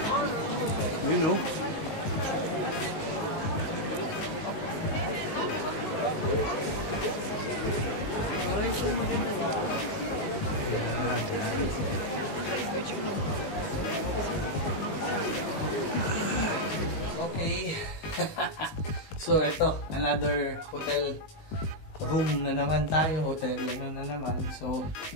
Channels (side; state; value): right; late; 19 ms